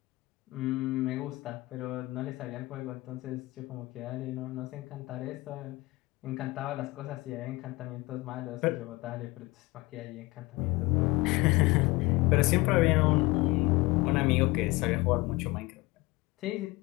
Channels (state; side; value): quieter; right; 21.9 dB